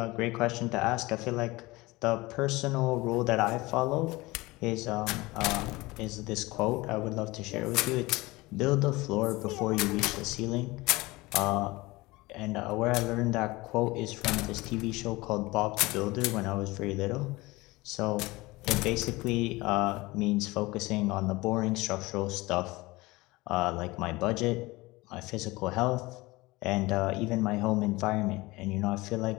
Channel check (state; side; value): quieter; right; 21.4 dB